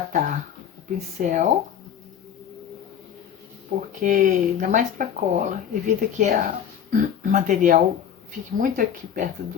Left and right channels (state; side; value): quieter; right; 8.8 dB